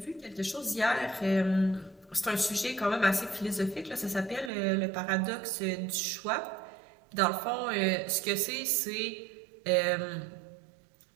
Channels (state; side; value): drops out; left; at 4.5 s